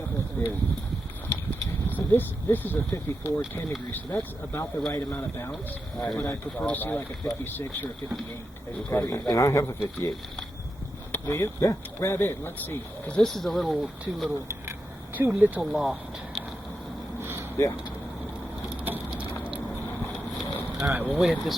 of times. So this is a 54, 10 degrees, so that's about the right amount of bounce. Right. But I prefer to see like a 56 or a 58. Okay. And I have a 58. Do you? Yeah. Grab it. Let's see, because this is a little too little loft. Yeah. All right, well, we hit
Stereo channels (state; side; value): normal; both; correlation 0.87